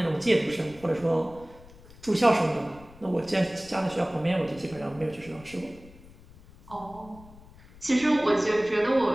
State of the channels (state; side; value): noise; left; rumble, 22 dB below the sound